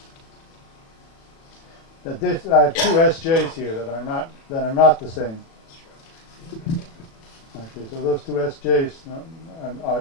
that this, I have two SJs here that are not the same. Okay, so those two SJs are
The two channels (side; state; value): right; late; 36 ms